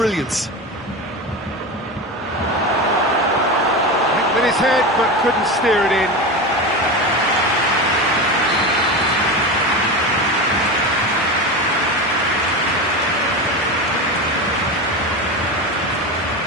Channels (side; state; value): both; normal; correlation 0.22